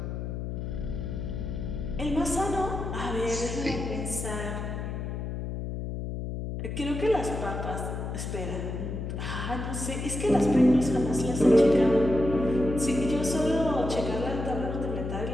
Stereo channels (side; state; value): left; noise; hum, 5 dB below the sound